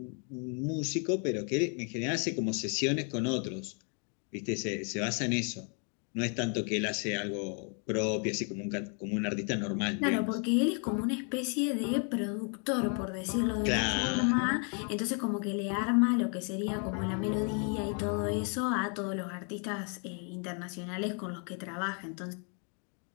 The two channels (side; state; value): right; quieter; 39.7 dB